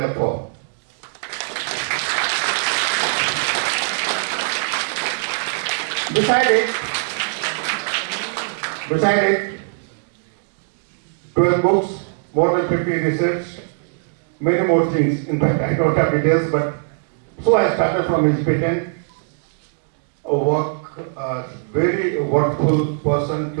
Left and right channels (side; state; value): left; silent; digital silence